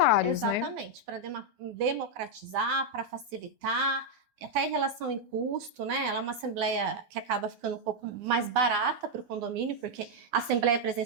Exatamente, né? Para democratizar, para facilitar, até em relação em custo, né? Ela é uma assembleia que acaba ficando um pouco mais barata para o condomínio, porque a assembleia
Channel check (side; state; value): left; late; 9.6 ms